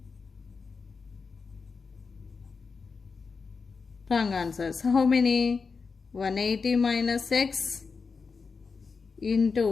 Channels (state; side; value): quieter; right; 5.0 dB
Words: Wrong answers. How many? 180 minus x